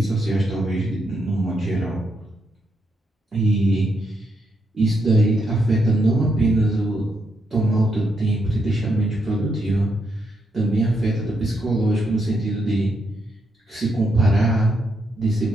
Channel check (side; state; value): both; normal; correlation 0.79